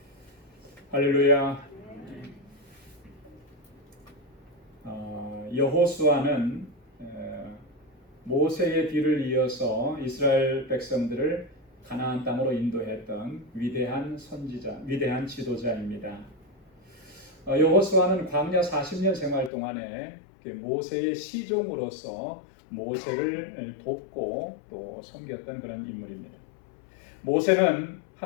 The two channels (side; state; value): right; drops out; at 19.5 s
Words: 할렐루야. 여호수아는 모세의 뒤를 이어서 이스라엘 백성들을 가나안 땅으로 인도했던 위대한 선지자, 위대한 지도자입니다. 여호수아는 광야 40년 생활 동안에 모세의 시종으로서 모세를 돕고 또 섬겼던 그런 인물입니다. 모세는